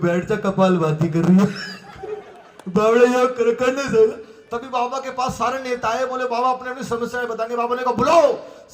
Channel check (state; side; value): identical; both; correlation 1.00